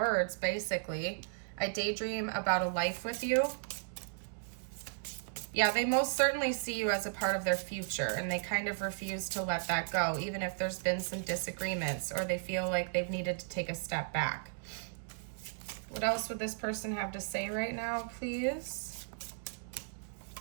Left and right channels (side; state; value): left; silent; digital silence